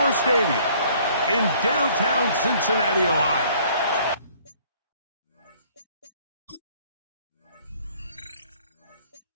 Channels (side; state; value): both; inverted; correlation -0.58